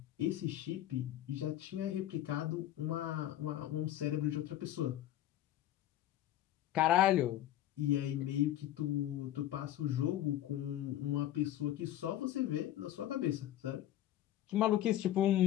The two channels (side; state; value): right; quieter; 12.8 dB